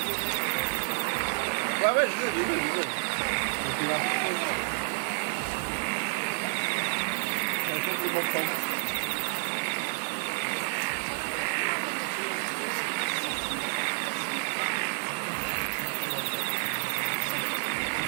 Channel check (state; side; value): silent; left; digital silence